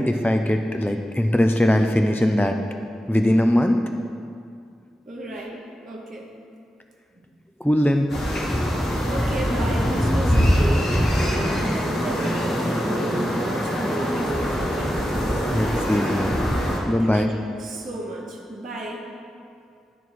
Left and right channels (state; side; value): normal; both; correlation 0.92